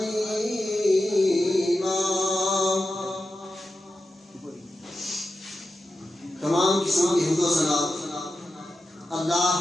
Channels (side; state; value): both; normal; correlation 0.90